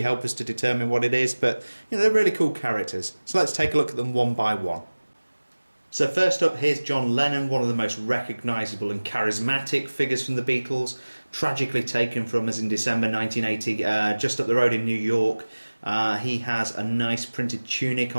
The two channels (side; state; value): both; inverted; correlation -1.00